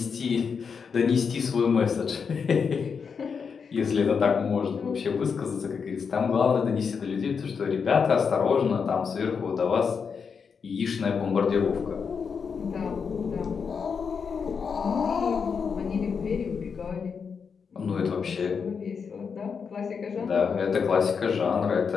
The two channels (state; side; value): quieter; right; 6.0 dB